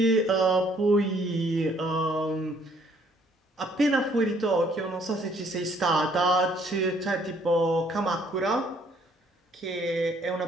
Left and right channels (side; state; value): both; normal; correlation 0.63